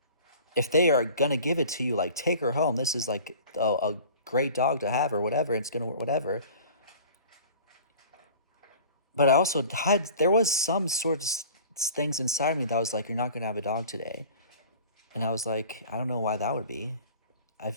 if they are gonna give it to you, take her home. This is a great dog to have or whatever. It's gonna whatever. But I also there was some sort of things inside me that was like, you're not gonna have a dog today, and I was like, I don't know why that would be. I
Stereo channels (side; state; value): both; inverted; correlation -0.44